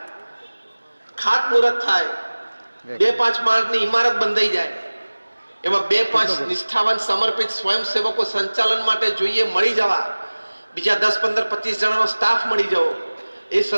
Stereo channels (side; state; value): both; inverted; correlation -1.00